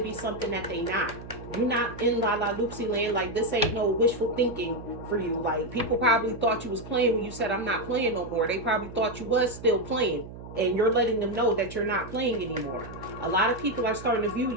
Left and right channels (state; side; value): noise; right; hum, 13 dB below the sound